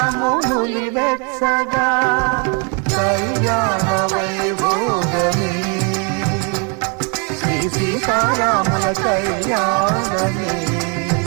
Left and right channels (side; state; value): left; quieter; 35.0 dB